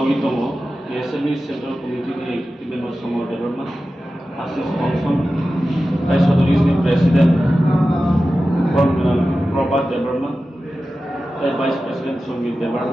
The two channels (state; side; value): normal; both; correlation 0.94